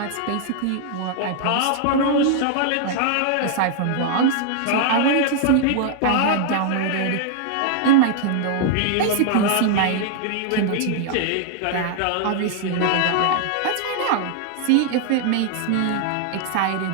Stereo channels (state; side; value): different; both; correlation 0.00